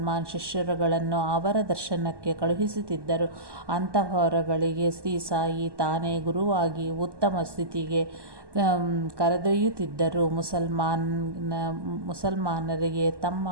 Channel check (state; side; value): late; left; 1.1 ms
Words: ಶಿಷ್ಯರುಗಳನ್ನು ಅವರ ದರ್ಶನಕ್ಕೆ ಕಳುಹಿಸುತ್ತಿದ್ದರು. ಅಂತಹವರುಗಳಿಗೆ ಶ್ರೀ ಸಾಯಿ ತಾನೇ ಗುರುವಾಗಿ ಉತ್ತಮ ಸ್ಥಿತಿಗೆ ಕರೆದೊಯ್ಯುತ್ತಿದ್ದರು. ಮುಸಲ್ಮಾನರಿಗೆ